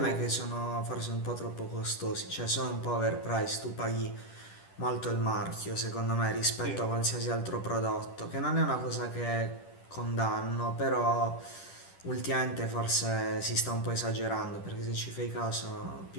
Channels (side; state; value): right; late; 10 ms